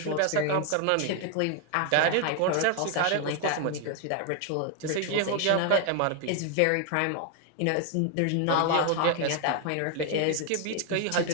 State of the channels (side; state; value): both; different; correlation 0.00